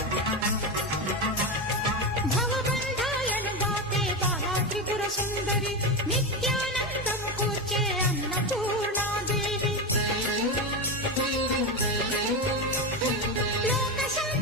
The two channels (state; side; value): normal; both; correlation 0.15